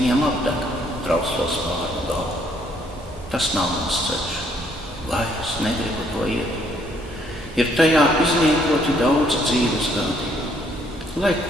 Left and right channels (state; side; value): normal; both; correlation 0.67